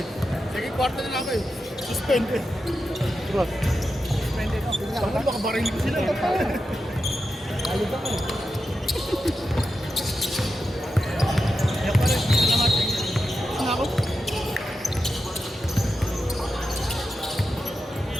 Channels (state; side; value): normal; both; correlation 0.89